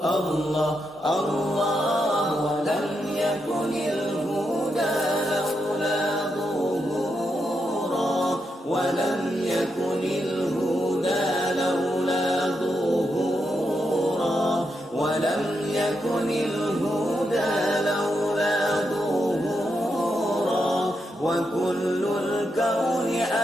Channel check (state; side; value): normal; both; correlation 0.83